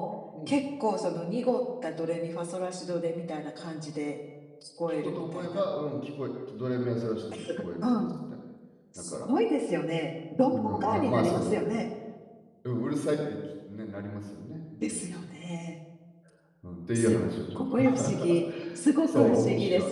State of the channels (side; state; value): both; identical; correlation 1.00